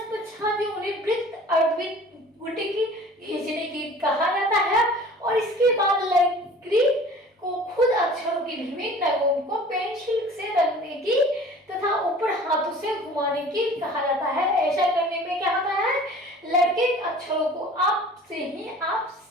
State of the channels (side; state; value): both; normal; correlation 0.45